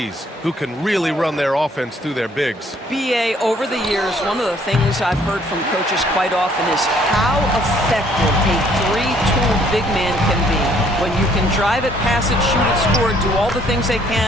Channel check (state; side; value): normal; both; correlation 0.63